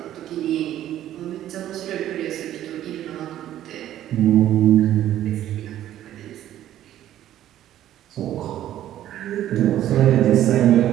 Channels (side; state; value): left; quieter; 12.4 dB